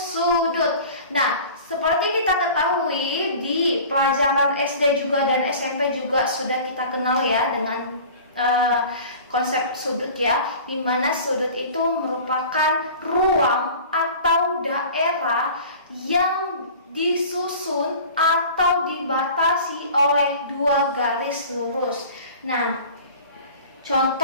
Nah, seperti kita ketahui di pelajaran SD juga dan SMP juga sudah kita kenal ya dengan konsep sudut ya, di mana sudut itu merupakan ruang atau daerah yang disusun atau dibatasi oleh dua garis lurus. Nah,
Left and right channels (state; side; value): inverted; both; correlation -0.41